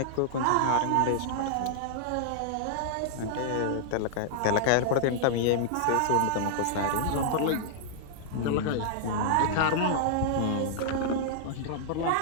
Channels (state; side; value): different; both; correlation -0.01